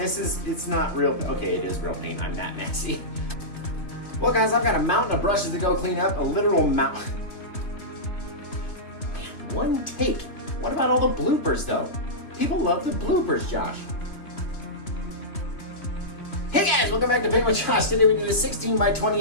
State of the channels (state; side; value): late; right; 3.1 ms